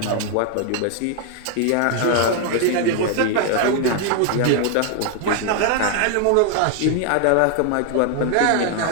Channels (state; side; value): different; both; correlation 0.00